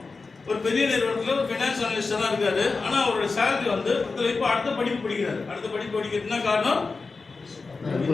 ஒரு பெரிய நிறுவனத்தில் ஒரு ஃபினான்ஸ் அனலிஸ்டாக தான் இருக்காரு. ஆனால் அவரோட சேலரி வந்து இப்போ அடுத்த படிப்பு படிக்கிறாரு. அடுத்த படிப்பு படிக்கிறது என்ன காரணம்?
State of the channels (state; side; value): quieter; right; 4.2 dB